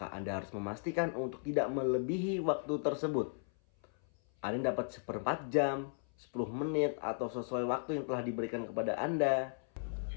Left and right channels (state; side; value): silent; right; 54 dB below the other